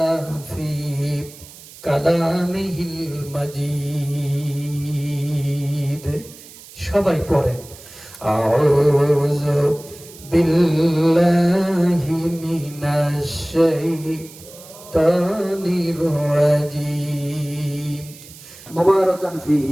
في كلامه المجيد সবাই পড়েন আউযু বিল্লাহি মিনাশ শাইতানির রাজীম মুবারাকান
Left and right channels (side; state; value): right; noise; hiss, 19 dB below the sound